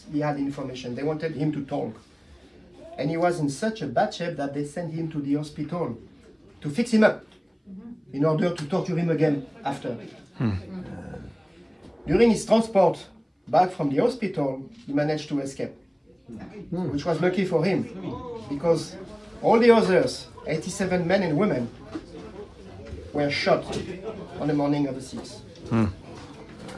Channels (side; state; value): both; identical; correlation 1.00